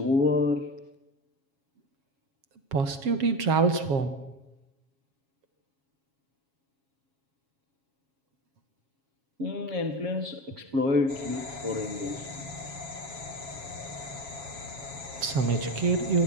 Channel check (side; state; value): left; late; 7.3 ms